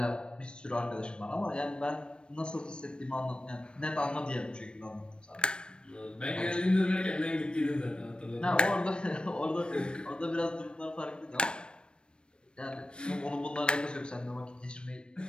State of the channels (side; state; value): right; late; 0.055 ms